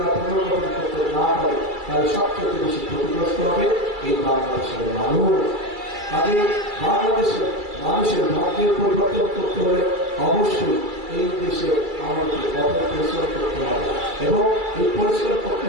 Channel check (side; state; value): left; late; 2.3 ms